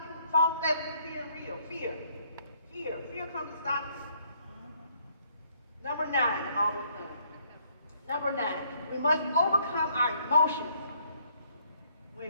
you. False evidence, fear and real. Fear comes to stop you. Number 9, I'm almost done. Number 9, we must overcome our emotions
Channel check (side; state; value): both; inverted; correlation -0.67